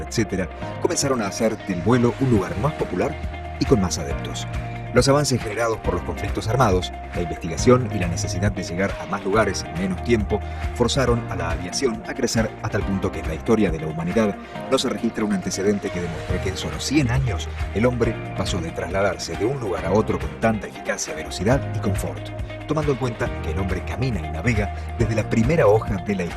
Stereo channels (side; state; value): both; identical; correlation 1.00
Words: etc., comenzaron a hacer del vuelo un lugar más popular y con más adeptos. Los avances generados por los conflictos armados, la investigación y la necesidad de llegar a más lugares en menos tiempo forzaron a la aviación a crecer a tal punto que en la historia de la humanidad no se registra un antecedente que demuestre que en solo 100 años el hombre pasó de trasladarse de un lugar a otro con tanta eficacia, velocidad y confort. Tomando en cuenta que el hombre camina y navega desde la primera hoja de la